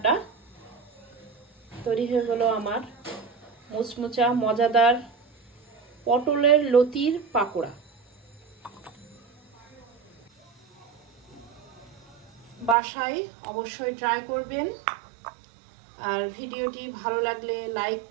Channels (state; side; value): drops out; left; at 12.8 s